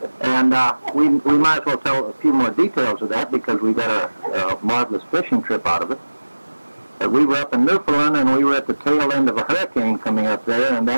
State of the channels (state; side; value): inverted; both; correlation -1.00